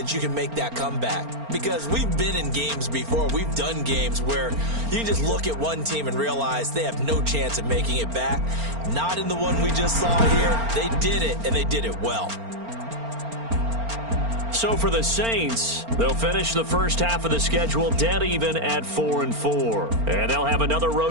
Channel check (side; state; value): left; late; 4.4 ms